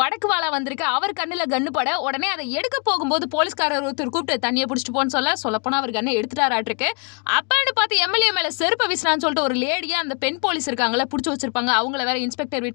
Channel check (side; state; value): right; quieter; 35.5 dB